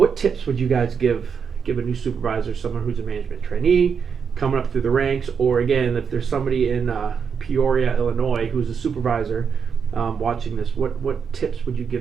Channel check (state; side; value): quieter; left; 6.5 dB